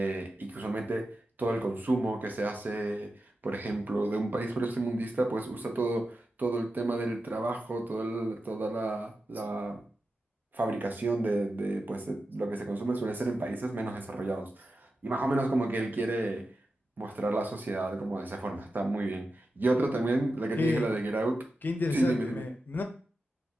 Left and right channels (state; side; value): normal; both; correlation 0.91